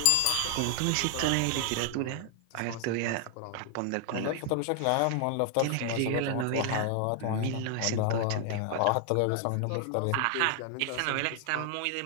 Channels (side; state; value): both; different; correlation 0.00